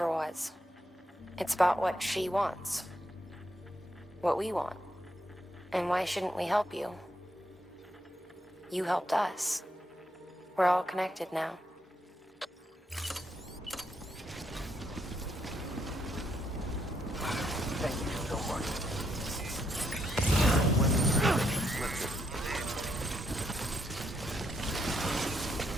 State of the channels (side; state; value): both; normal; correlation 0.77